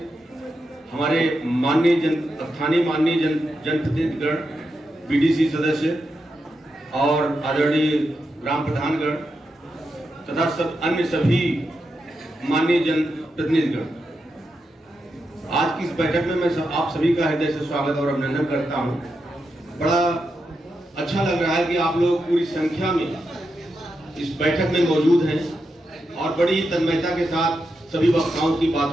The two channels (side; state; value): both; normal; correlation 0.86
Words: हमारे स्थानीय माननीय जनप्रतिनिधिगण, बीडीसी सदस्य और आदरणीय ग्राम प्रधानगण तथा अन्य सभी माननीय जनप्रतिनिधिगण, आज की इस बैठक में मैं आप सभी का हृदय से स्वागत और अभिनंदन करता हूं। बड़ा अच्छा लग रहा है कि आप लोग पूरी संख्या में इस बैठक में मौजूद हैं और बड़ी तन्मयता के साथ सभी वक्ताओं की